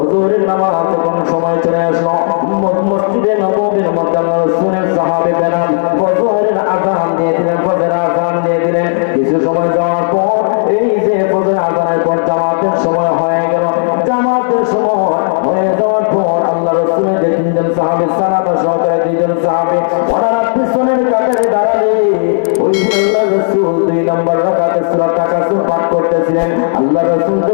নামাজ তখন সময় চলে আসলো। মসজিদে নববীর মধ্যে আল্লাহ রাসূলের সাহাবী বেলাল ফজরের আযান দিয়ে দিলেন, ফজরের আযান দিয়ে দিলেন। কিছু সময় যাওয়ার পর এই যে ফজরের আযানের পর জামাতের সময় হয়ে গেল। জামাতের সময় হয়ে যাওয়ার পর আল্লাহ রাসূলের যে তিনজন সাহাবী সালাবা সহকারে দুইজন সাহাবী ওনারা পিছনের কাতারে দাঁড়ালে ওই আল্লাহ রাসূল 2 নম্বর রাকাতে সূরা তাকাসুর পাঠ করতেছিলেন। আল্লাহ রাসূল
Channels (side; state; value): right; silent; digital silence